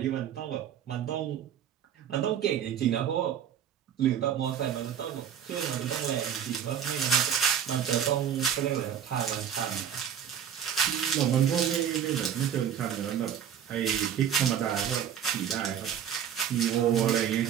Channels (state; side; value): quieter; left; 8.9 dB